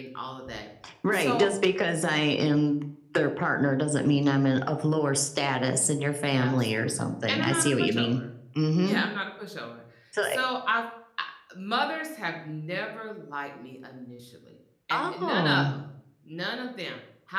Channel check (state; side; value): identical; both; correlation 1.00